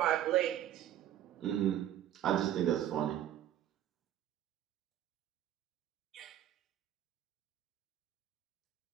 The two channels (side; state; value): left; quieter; 11.5 dB